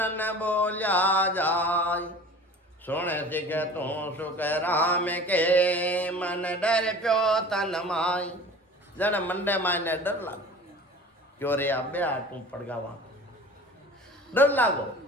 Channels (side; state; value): both; normal; correlation 0.41